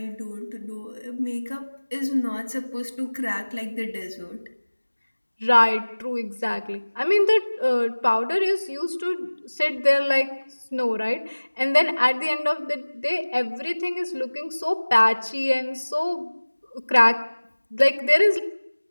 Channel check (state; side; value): inverted; both; correlation -1.00